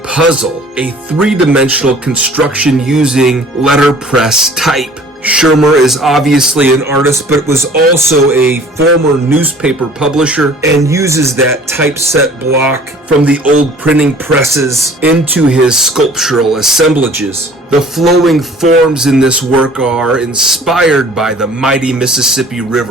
a three-dimensional construction using letterpress type. Schermer is obviously an artist, but was also a former newspaper publisher and uses that typeset block from the old printing presses into his sculptural assemblages. The flowing forms in this work are inspired by the mighty Mississippi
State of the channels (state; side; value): normal; both; correlation 0.50